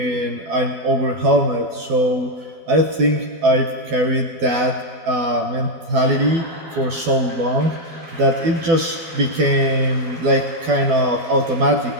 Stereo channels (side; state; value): left; late; 12 ms